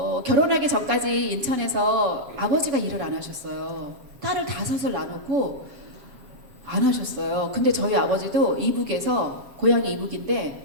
결혼하기 전까지 인천에서 아버지가 일을 안 하셨어요. 딸을 5을 낳아놓고 안 하셨어요. 근데 저희 아버지도 이북에서 고향이 이북인데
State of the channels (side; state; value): left; late; 7.1 ms